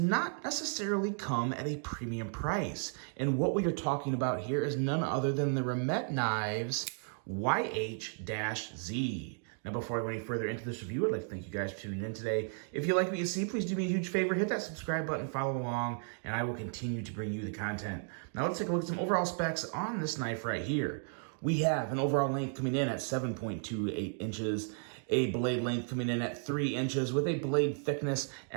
necessarily come at a premium price. And what we are talking about here is none other than the Remet Knives YH-Z. Now, before I go any further into this review, I'd like to thank you guys for tuning in today. If you like what you see, please do me a huge favor, hit that subscribe button, follow along, and I will continue to bring you the content. Now, let's take a look at some overall specs on this knife right here. We have an overall length coming in at 7.28 inches, a blade length coming in at 3 inches with a blade thickness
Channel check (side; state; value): left; silent; 55 dB below the other